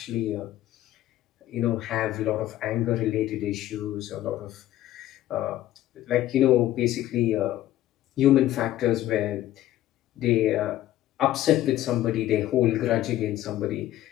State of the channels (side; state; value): right; quieter; 13.9 dB